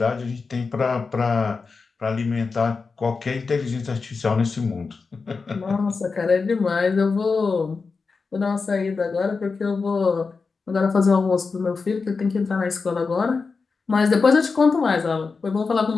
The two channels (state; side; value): quieter; right; 4.6 dB